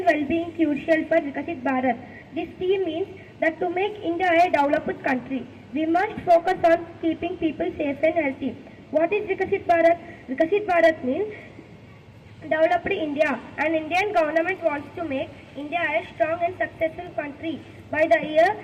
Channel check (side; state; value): both; identical; correlation 1.00